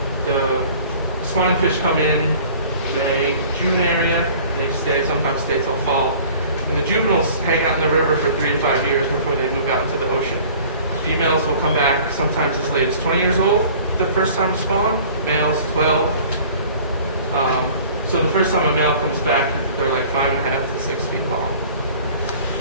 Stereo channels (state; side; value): inverted; both; correlation -0.48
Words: The spawning fish come in May, June area. They sometimes stay till fall. And the juveniles hang out in the river for 3 to 5 years before they move out into the ocean. Females will come back sometimes as late as 20 years old the first time to spawn. Males 12. So the first time a male comes back, they're like 5.5 to 6 feet long.